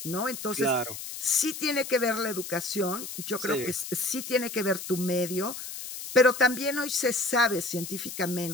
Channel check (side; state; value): left; noise; hiss, 9 dB below the sound